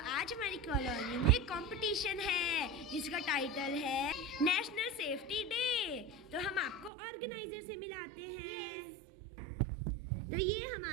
हमारी कॉलोनी में कंपटीशन है जिसका टाइटल है नेशनल सेफ्टी डे। तो हम आपको ऑर्गेनाइजर से मिलाते हैं। तो ये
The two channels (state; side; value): drops out; left; at 6.9 s